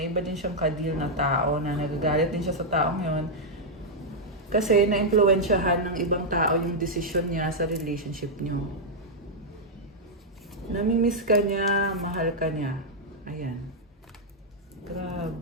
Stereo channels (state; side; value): normal; both; correlation -0.04